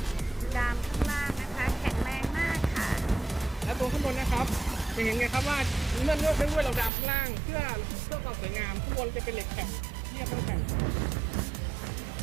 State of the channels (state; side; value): drops out; left; at 6.9 s